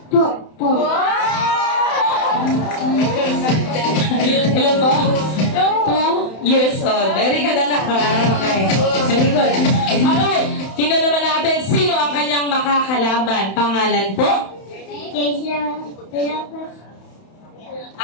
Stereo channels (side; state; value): right; late; 31 ms